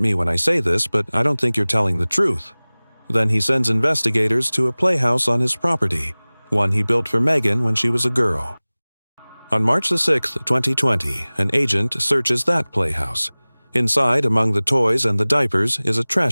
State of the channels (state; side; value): inverted; both; correlation -1.00